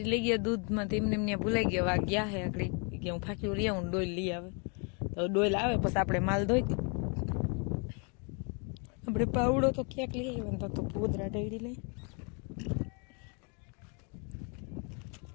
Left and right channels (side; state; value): right; quieter; 36.3 dB